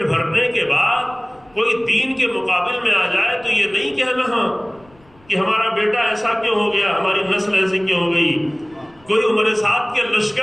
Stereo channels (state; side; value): noise; left; rumble, 30 dB below the sound